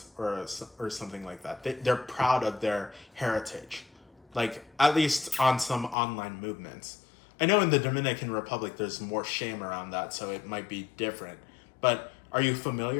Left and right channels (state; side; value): drops out; right; at 6.0 s